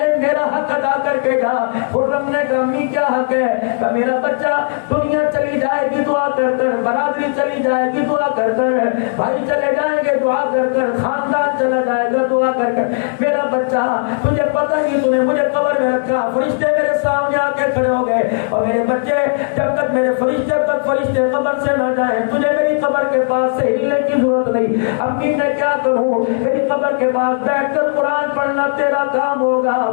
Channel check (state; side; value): silent; right; digital silence